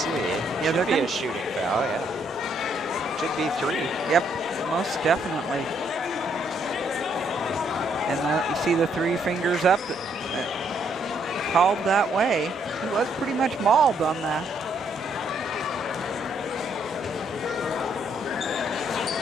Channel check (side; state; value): both; normal; correlation 0.71